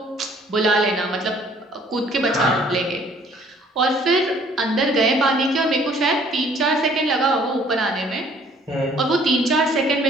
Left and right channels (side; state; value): both; normal; correlation 0.58